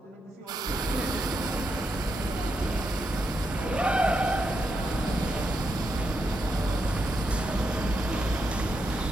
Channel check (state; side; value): normal; both; correlation 0.82